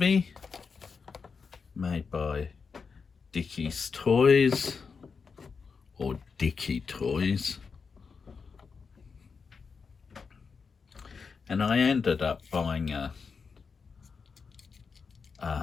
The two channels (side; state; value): right; quieter; 5.3 dB